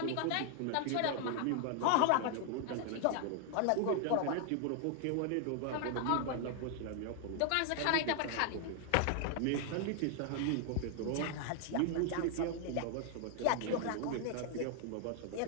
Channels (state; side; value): different; both; correlation 0.00